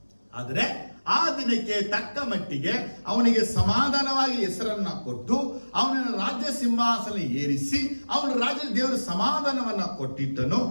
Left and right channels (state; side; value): inverted; both; correlation -1.00